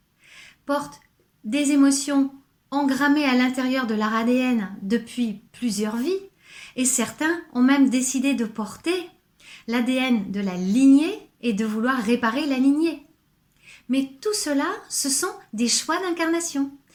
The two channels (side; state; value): both; identical; correlation 1.00